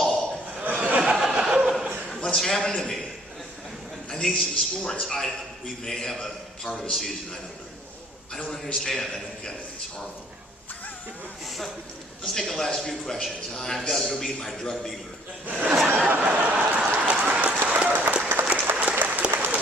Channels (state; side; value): normal; both; correlation 0.59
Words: What's happened to me? I need some sports. We may have a part of a season. I don't know. I don't understand. I don't get it. It's horrible. Let's take the last few questions. I've got to go meet my drug dealer.